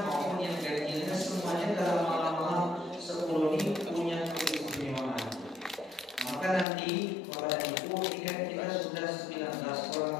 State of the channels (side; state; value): right; drops out; at 6.7 s